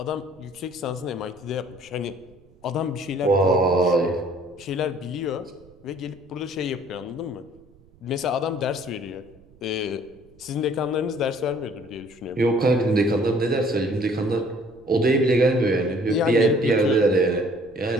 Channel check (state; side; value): noise; right; rumble, 28 dB below the sound